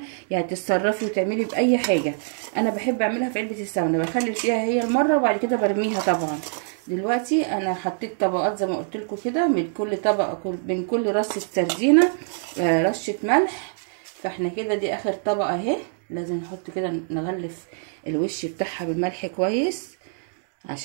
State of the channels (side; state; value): left; silent; digital silence